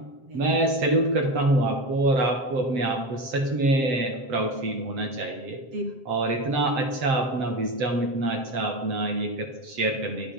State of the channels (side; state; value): left; late; 7.7 ms